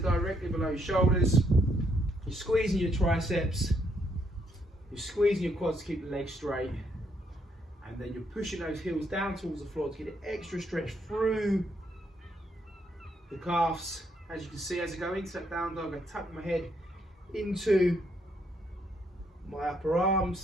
below your shoulders. You're squeezing your triceps. You're squeezing your quads to keep the legs straight, and then you're pushing those heels down towards the floor to get an extra stretch through the calves. As you can see, as I go into that down dog, I tuck my head into my upper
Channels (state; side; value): normal; both; correlation 0.73